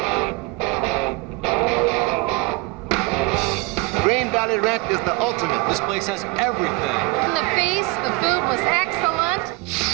Snack is the ultimate. This place has everything. The feast, the food was excellent.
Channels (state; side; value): quieter; left; 23.0 dB